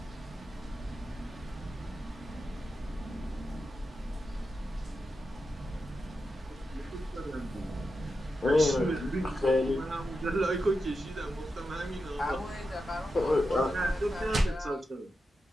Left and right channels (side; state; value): both; normal; correlation 0.89